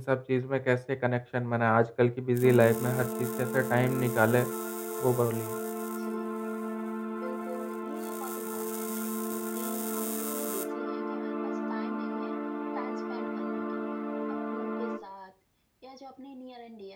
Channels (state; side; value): identical; both; correlation 1.00